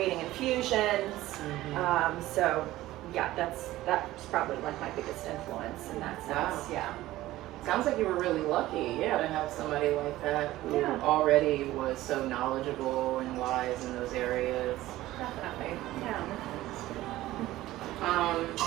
infusions. So yeah, that's probably like my biggest influence in that sense. Wow. Yeah. Sounds like you were really lucky, to have somebody like that who already was so knowledgeable and wise in those areas. Definitely. Yeah.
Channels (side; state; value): left; quieter; 16.1 dB